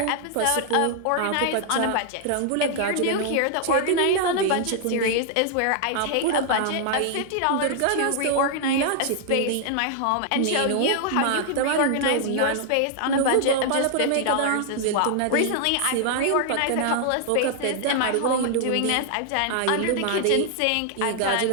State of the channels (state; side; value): different; both; correlation 0.00